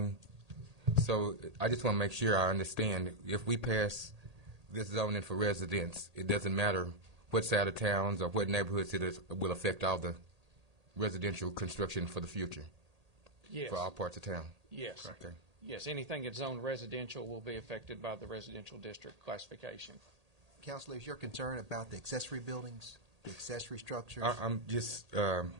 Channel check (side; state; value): left; late; 1.8 ms